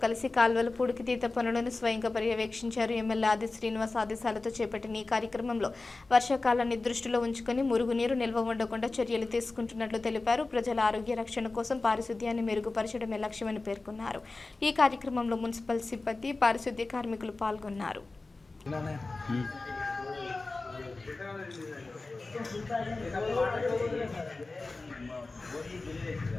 కలిసి కాల్వల పూడికితీత పనులను స్వయంగా పర్యవేక్షించారు. ఎమ్మెల్యే ఆది శ్రీనివాస్ ఆదేశాలతో చేపట్టిన ఈ కార్యక్రమంలో వర్షాకాలాన్ని దృష్టిలో ఉంచుకుని మురుగునీరు నిల్వ ఉండకుండా చర్యలు తీసుకుంటున్నట్లు తెలిపారు. ప్రజల ఆరోగ్య రక్షణ కోసం పారిశుద్ధ్యాన్ని మెరుగుపరచడమే లక్ష్యమని పేర్కొన్నారు. ఈ కార్యక్రమంలో మున్సిపల్ సిబ్బంది, పారిశుద్ధ్య కార్మికులు పాల్గొన్నారు.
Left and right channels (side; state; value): right; quieter; 3.5 dB